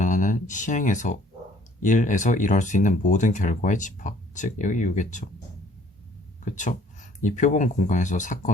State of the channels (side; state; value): both; normal; correlation 0.58